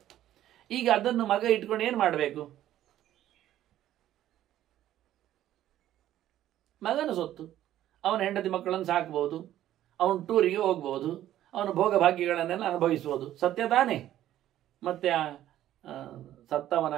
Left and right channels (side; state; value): left; quieter; 12.7 dB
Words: ಈಗ ಅದನ್ನು ಮಗ ಇಟ್ಕೊಂಡು ಏನು ಮಾಡಬೇಕು? ಮಗನ ಸೊತ್ತು, ಅವನ ಹೆಂಡತಿ ಮಕ್ಕಳನ್ನು ಸಾಕ್ಬೋದು, ಅವನು ಟೂರಿಗೆ ಹೋಗ್ಬೋದು, ಅವನ ಭೋಗ ಭಾಗ್ಯಗಳನ್ನೆಲ್ಲ ಅನುಭವಿಸ್ಬೋದು, ಸತ್ಯ ತಾನೇ? ಮತ್ತೆ ಸತ್ತವನ